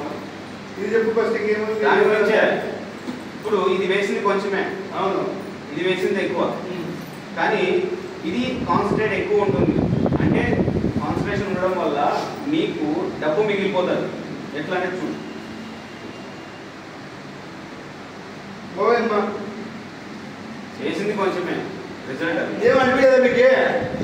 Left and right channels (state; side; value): identical; both; correlation 1.00